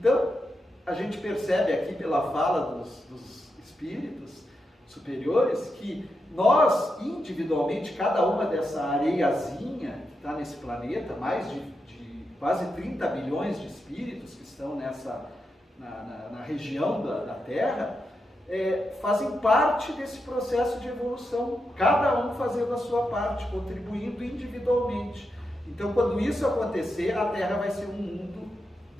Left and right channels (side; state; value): both; normal; correlation 0.86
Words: a gente percebe aqui pela fala dos espíritos superiores que nós, individualmente, cada uma dessa areiazinha que está nesse planeta, mais de quase 30 bilhões de espíritos que estão na região da Terra, fazem parte desse processo de evolução, cada um fazendo a sua parte, contribuindo individualmente. Então, quando isso acontecer, a Terra vai ser um mundo